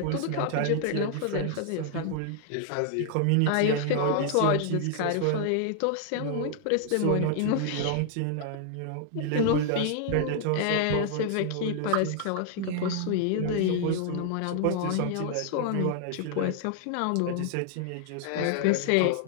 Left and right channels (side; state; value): both; different; correlation -0.01